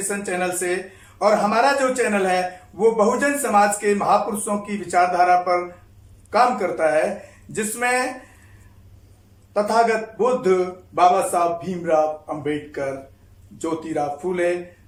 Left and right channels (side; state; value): both; identical; correlation 1.00